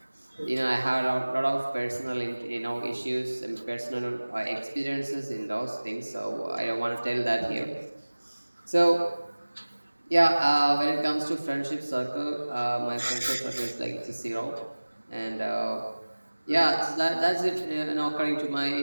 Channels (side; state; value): both; inverted; correlation -1.00